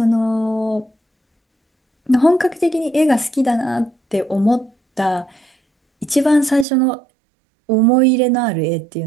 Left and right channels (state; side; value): drops out; left; at 6.7 s